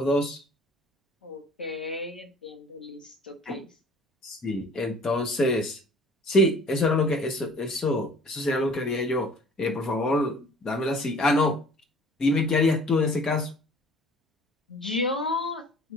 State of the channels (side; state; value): both; normal; correlation 0.50